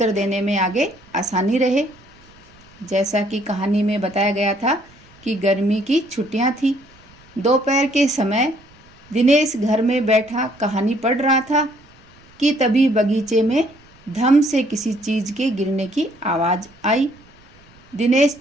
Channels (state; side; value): noise; right; rumble, 27 dB below the sound